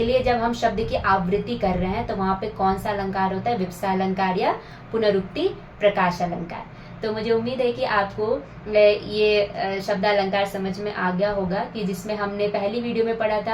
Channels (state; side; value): identical; both; correlation 1.00